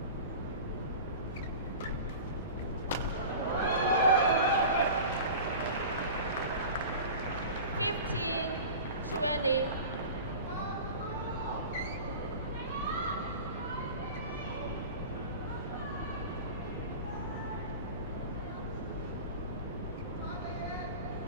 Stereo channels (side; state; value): both; inverted; correlation -0.35